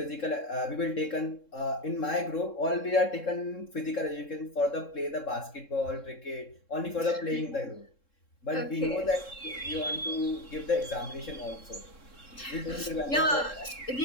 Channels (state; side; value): late; right; 3.7 ms